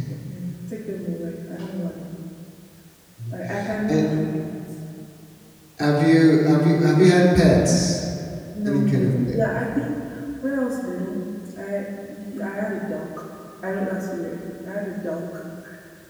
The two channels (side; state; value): both; identical; correlation 1.00